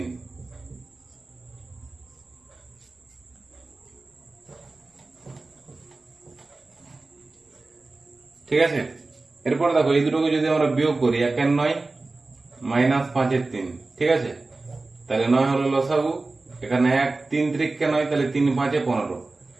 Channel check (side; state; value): left; quieter; 3.4 dB